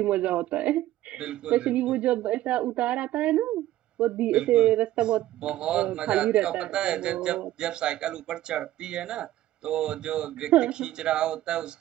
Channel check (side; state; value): left; quieter; 14.4 dB